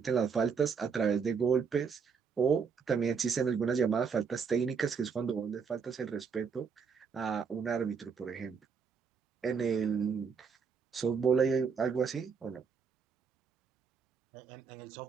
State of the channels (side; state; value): left; quieter; 6.0 dB